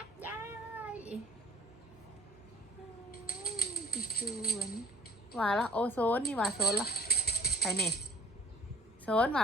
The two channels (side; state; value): both; normal; correlation 0.51